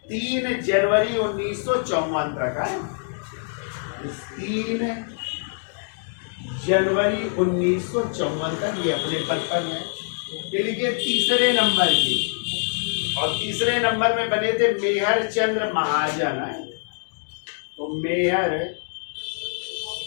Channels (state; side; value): silent; right; digital silence